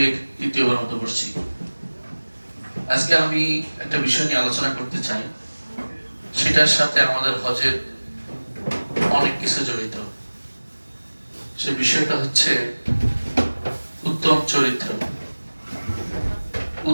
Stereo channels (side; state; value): both; inverted; correlation -1.00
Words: দ্বিতীয়বার মতো বসছি। আজকে আমি একটা বিষয় নিয়ে আলোচনা করতে চাই, সেটার সাথে আমাদের হজের অনেক কিছু জড়িত। সে বিষয়টা হচ্ছে উত্তম চরিত্র।